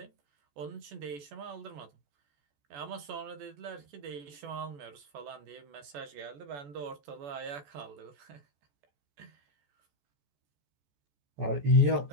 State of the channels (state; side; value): late; left; 14 ms